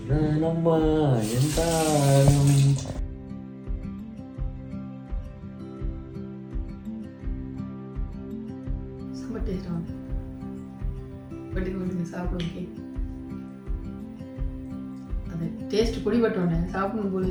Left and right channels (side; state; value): both; identical; correlation 1.00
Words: சாப்பிடுங்க. அது டேஸ்ட் குடிபட்டோன்னே சாப்பிடணும் போல